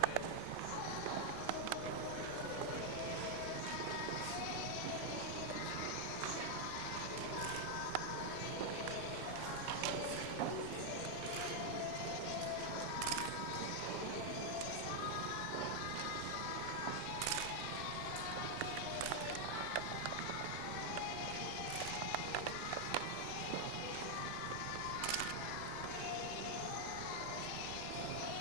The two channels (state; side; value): different; both; correlation 0.00